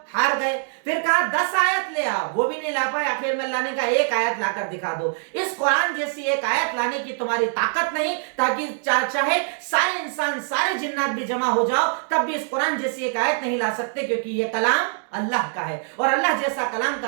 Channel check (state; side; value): silent; left; 61 dB below the other